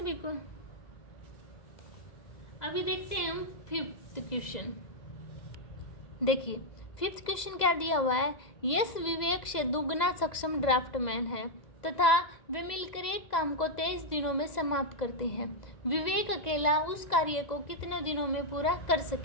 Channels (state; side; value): late; right; 2.0 ms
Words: को? अभी देखते हैं हम 5th क्वेश्चन। देखिए 5th क्वेश्चन क्या दिया हुआ है। यस विवेक से दुगना सक्षम ड्राफ्टमैन है तथा वे मिलकर एक काम को 23 दिनों में समाप्त करते हैं। विवेक अकेला उस कार्य को कितने दिनों में पूरा कर